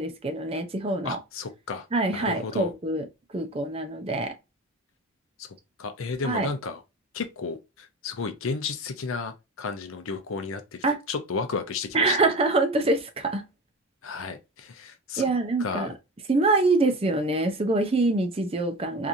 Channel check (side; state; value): both; normal; correlation 0.30